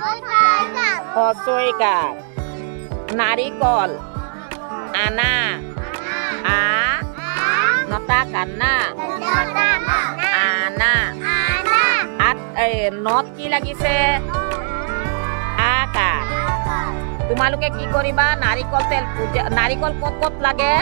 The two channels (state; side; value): silent; left; 67 dB below the other